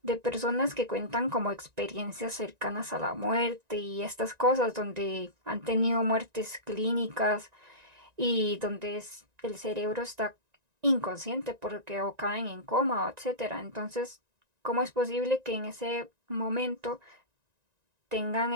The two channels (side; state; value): left; late; 1.9 ms